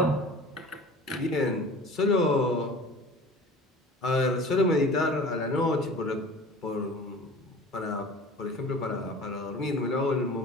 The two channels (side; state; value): both; normal; correlation 0.42